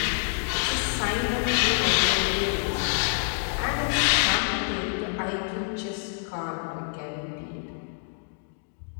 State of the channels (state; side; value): silent; right; digital silence